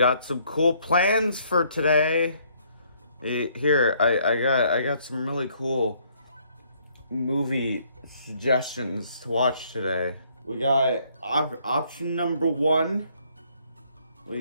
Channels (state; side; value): inverted; both; correlation -0.66